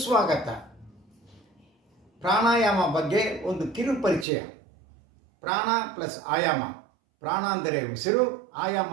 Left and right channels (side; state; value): left; drops out; at 4.2 s